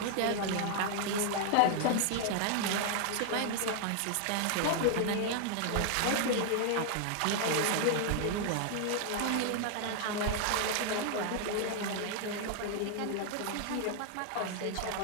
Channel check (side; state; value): both; different; correlation 0.00